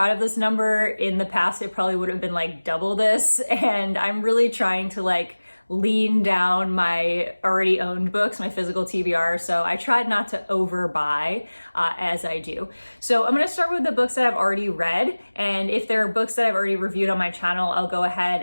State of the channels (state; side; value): inverted; both; correlation -1.00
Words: of this number. In the past, it probably would have been like double this, and I'm really trying to lean down my already owned books, my physical TBR, so I tried not to overbuy as I do. So I'm gonna start with the books that I've already read, and if there are books that I've already reviewed on my channel, I'll go ahead